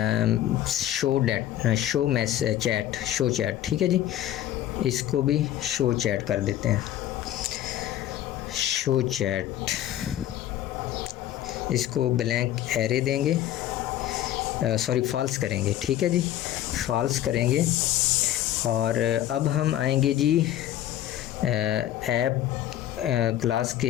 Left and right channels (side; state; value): right; quieter; 12.5 dB